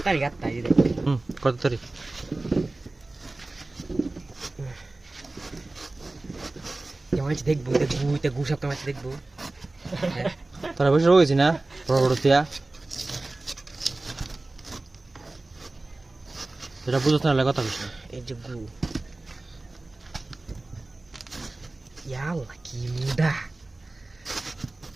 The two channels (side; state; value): left; quieter; 3.0 dB